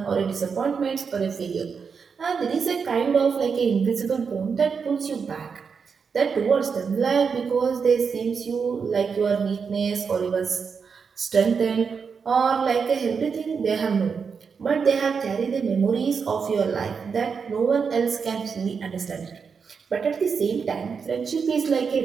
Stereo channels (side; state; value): left; quieter; 5.8 dB